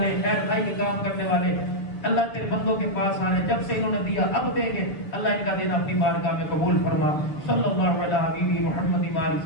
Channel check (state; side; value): late; right; 6.9 ms